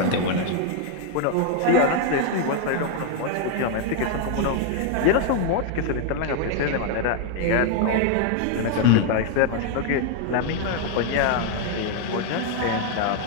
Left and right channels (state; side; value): different; both; correlation 0.00